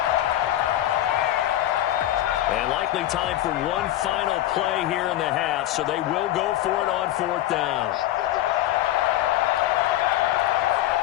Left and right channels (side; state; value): right; quieter; 13.8 dB